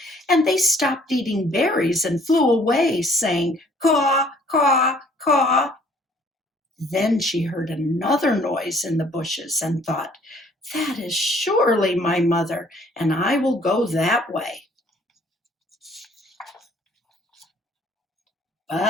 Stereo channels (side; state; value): both; normal; correlation 0.59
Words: and they stopped eating berries and flew away, saying, "Caw, caw, caw." Then she heard another noise in the bushes and thought, "That is surely my mother, and I will go that way."